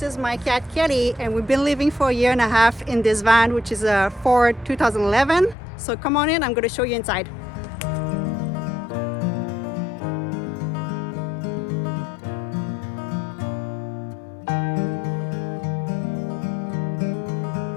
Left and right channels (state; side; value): drops out; right; at 5.6 s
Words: is my cat Kelly, and we've been living for a year and a half in this van, which is a Ford 2011. So come on in, I'm going to show you inside.